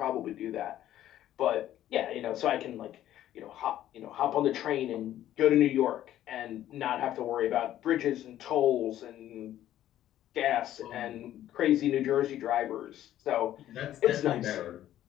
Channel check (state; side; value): quieter; right; 12.5 dB